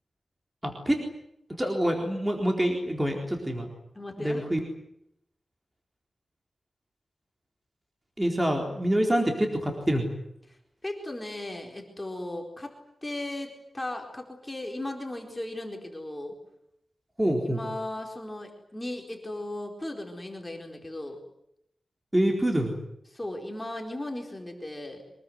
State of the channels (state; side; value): normal; both; correlation 0.96